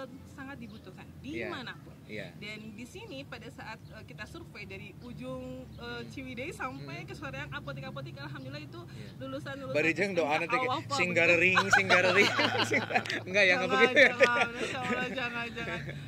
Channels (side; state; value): both; identical; correlation 1.00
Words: sangat dibutuhkan dimanapun. Dan di sini pada saat kita survei dari ujung Ciwidey sampai ke soreang apotek-apotek, alhamdulillah itu lulusan Barijeng doa nanti singgarering enggak ya, enggak begitu ya. Jangan.